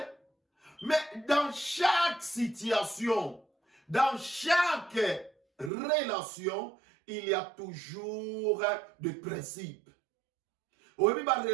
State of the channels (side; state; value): left; drops out; at 5.7 s